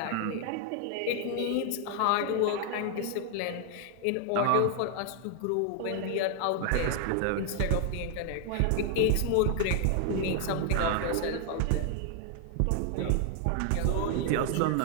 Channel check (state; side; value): different; both; correlation 0.00